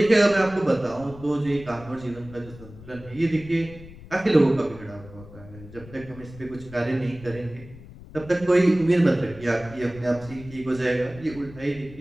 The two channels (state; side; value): noise; left; rumble, 18 dB below the sound